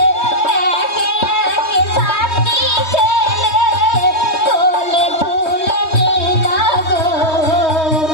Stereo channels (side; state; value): right; late; 3.2 ms